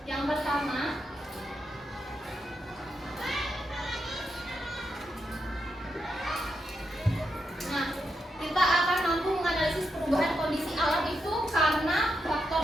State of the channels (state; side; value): normal; both; correlation 0.84